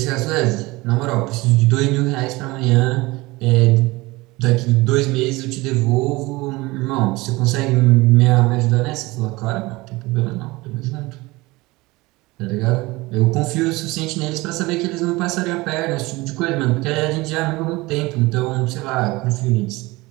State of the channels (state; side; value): quieter; left; 21.8 dB